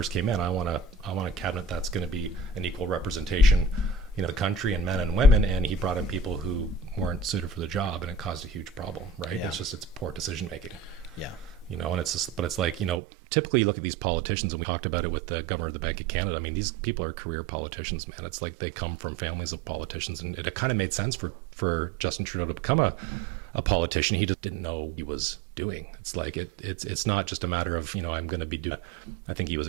came in, I want a cabinet that's going to be an equal representation, the country and men and women. And he brought in people who weren't suited for the job, and it caused a huge problem. Right? Yeah. It's poor decision making. Yeah. And it's just, but it's like, typically you look at these politicians, and we talked about it with the governor of the Bank of Canada. I mean, these people are career politicians, man. It's like they come from families of politicians, and it kind of made sense for Justin Trudeau to become a politician. He just didn't know what he was doing. It's like, it's not just a matter of, I'm going to be doing, I think he was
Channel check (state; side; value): drops out; left; at 13.0 s